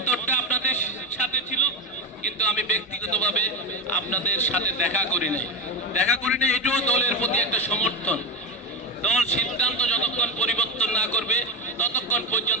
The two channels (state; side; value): normal; both; correlation 0.14